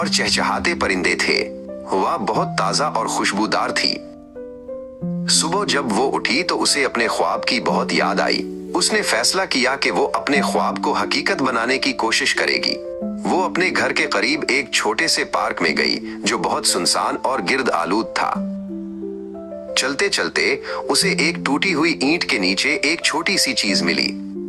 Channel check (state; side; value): identical; both; correlation 1.00